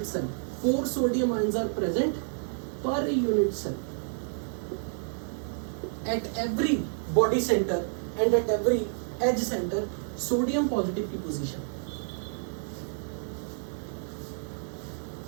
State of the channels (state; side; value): silent; left; digital silence